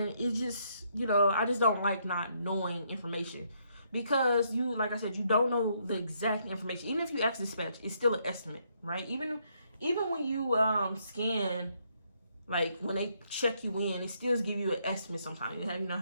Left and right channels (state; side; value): inverted; both; correlation -0.73